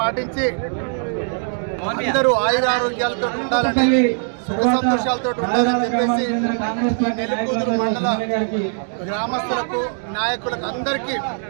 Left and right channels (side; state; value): left; silent; digital silence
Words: అందరూ ఆయురారోగ్యాలతో ఉండాలని, సుఖ సంతోషాలతో ఉండాలని చెప్పేసి నెల్లికూదురు మండల గ్రామస్తులకు, నాయకులకు అందరికీ